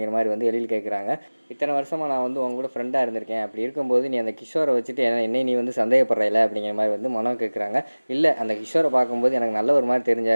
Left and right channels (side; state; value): both; inverted; correlation -1.00